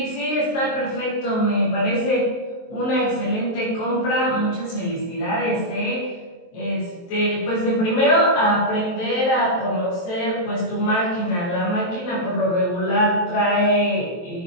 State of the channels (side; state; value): right; late; 23 ms